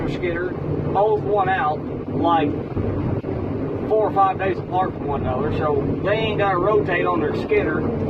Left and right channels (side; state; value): both; identical; correlation 1.00